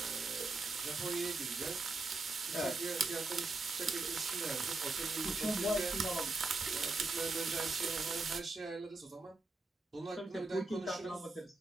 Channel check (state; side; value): quieter; left; 3.4 dB